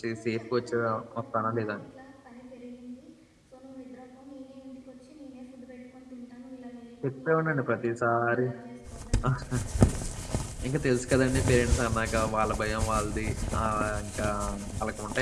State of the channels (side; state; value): both; identical; correlation 1.00